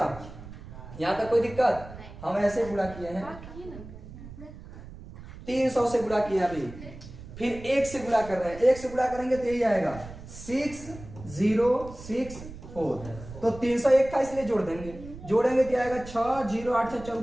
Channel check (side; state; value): right; noise; rumble, 15 dB below the sound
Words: यहां तक कोई दिक्कत? हम ऐसे गुणा किए हैं, 300 से गुणा किया अभी, फिर 1 से गुणा कर रहे हैं, 1 से गुणा करेंगे तो यही आएगा 6064। तो 301 था इसलिए जोड़ देंगे, जोड़ेंगे तो आएगा 6 0 8 6